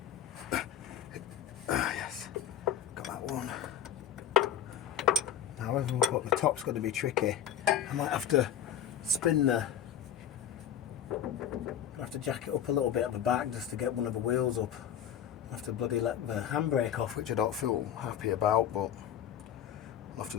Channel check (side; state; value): right; quieter; 9.7 dB